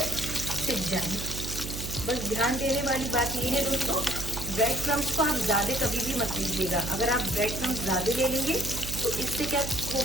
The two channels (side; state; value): right; noise; hum, 7 dB below the sound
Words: सिक जाए। बस ध्यान देने वाली बात ये है दोस्तों, ब्रेड क्रम्स को आप ज्यादा कभी भी मत लीजिएगा। अगर आप ब्रेड क्रम्स ज्यादा ले लेंगे तो इससे क्या